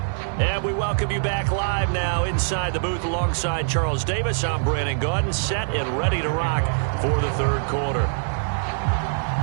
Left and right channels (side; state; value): left; silent; 60 dB below the other